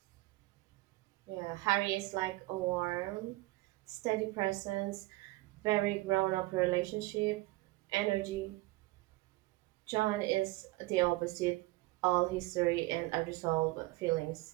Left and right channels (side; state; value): left; quieter; 20.3 dB